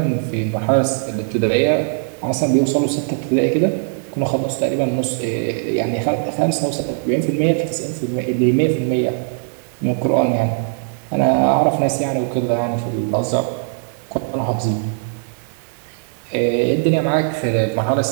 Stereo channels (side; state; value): left; silent; digital silence